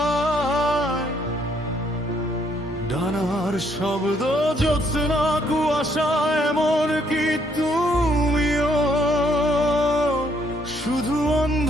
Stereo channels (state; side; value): normal; both; correlation 0.69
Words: ডানার শব্দ, জ্যোৎস্না, কুয়াশা, এমন কি তুমিও, শুধু